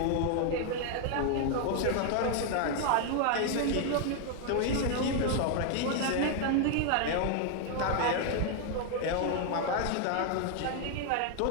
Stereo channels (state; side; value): different; both; correlation 0.00